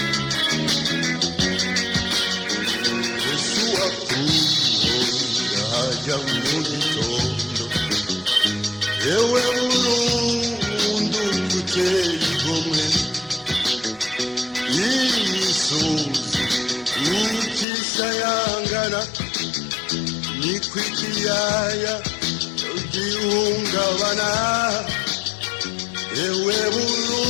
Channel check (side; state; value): right; drops out; at 17.7 s